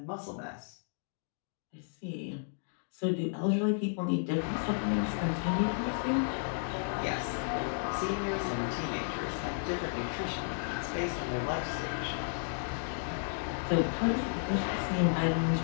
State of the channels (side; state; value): right; silent; digital silence